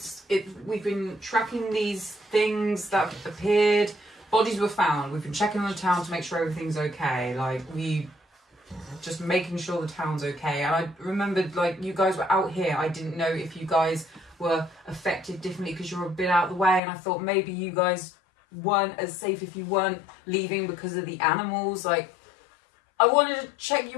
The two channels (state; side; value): drops out; right; at 16.8 s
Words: we've been tracking these things that appeared. Bodies were found. We've been checking on the town to make sure everything's okay. Like just making sure the town's okay. And I remembered, like, you guys were out here. I didn't know if you guys were affected differently because you're a bit out of the way, and I thought maybe you guys weren't as safe if you weren't leaving because of the animals. Like, I wanted to check